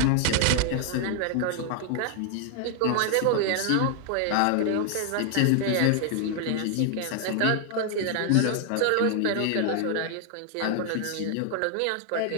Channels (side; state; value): both; different; correlation 0.00